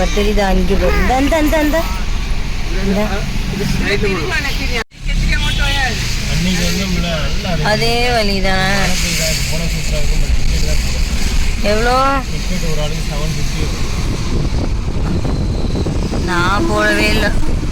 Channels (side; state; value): both; identical; correlation 1.00